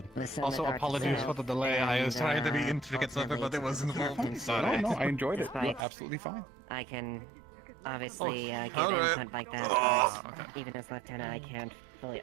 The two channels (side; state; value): left; drops out; at 5.9 s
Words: Also, apologies for the delay. I was trying to be intricate something, but it wasn't. Sorry. No, I enjoyed it. You're absolutely fine. I can obviously give input like that, but even as lieutenant, I can't fully